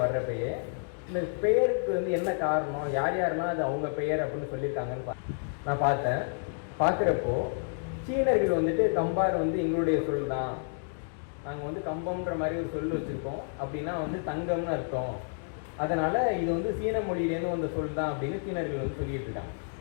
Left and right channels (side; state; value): right; silent; digital silence